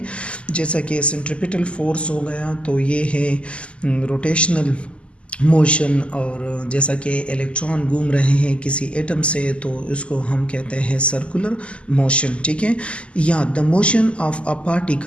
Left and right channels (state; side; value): late; right; 0.056 ms